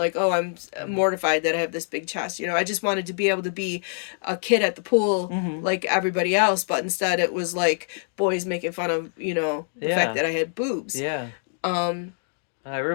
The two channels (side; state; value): right; silent; 62 dB below the other